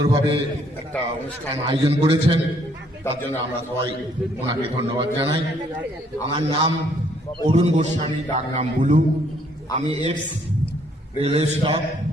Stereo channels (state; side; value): normal; both; correlation 0.66